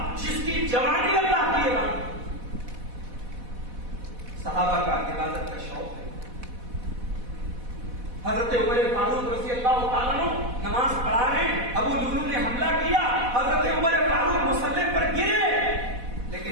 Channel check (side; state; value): left; late; 4.1 ms